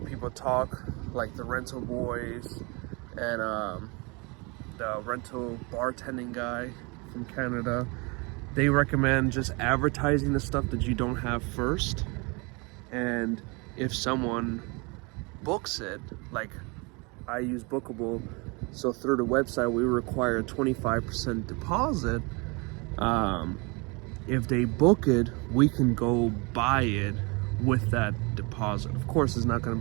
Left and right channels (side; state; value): left; quieter; 29.0 dB